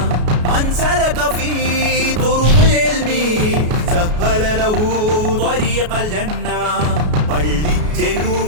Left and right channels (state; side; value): late; left; 33 ms